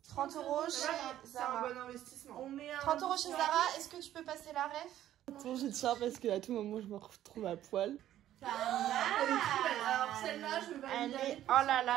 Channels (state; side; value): quieter; left; 12.4 dB